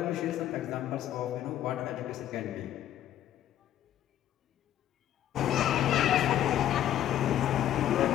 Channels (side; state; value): right; quieter; 11.7 dB